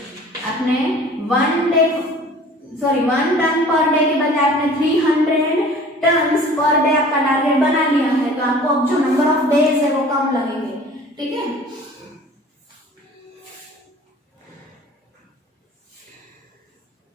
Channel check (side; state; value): both; normal; correlation 0.47